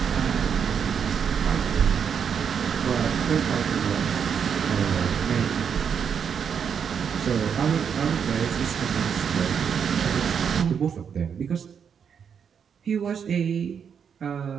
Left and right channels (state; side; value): quieter; left; 7.3 dB